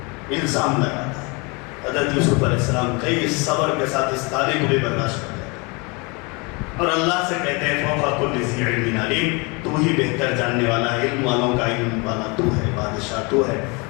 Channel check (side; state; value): right; quieter; 29.1 dB